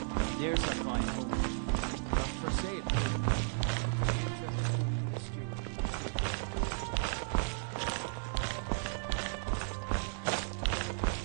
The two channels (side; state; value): left; silent; digital silence